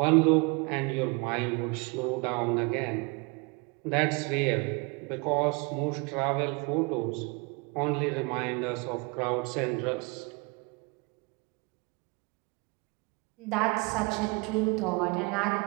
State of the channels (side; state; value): left; quieter; 29.3 dB